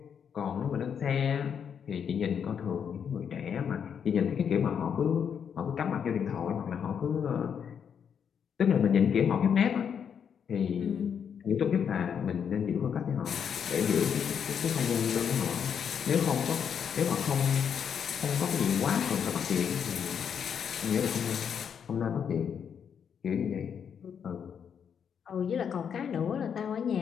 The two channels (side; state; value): right; quieter; 7.6 dB